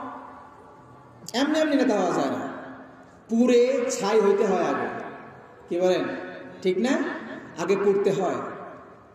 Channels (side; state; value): both; identical; correlation 1.00